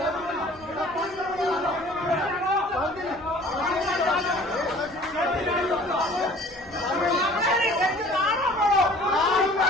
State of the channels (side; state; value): left; noise; rumble, 24 dB below the sound